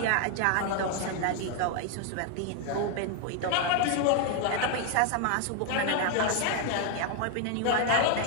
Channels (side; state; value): both; different; correlation 0.01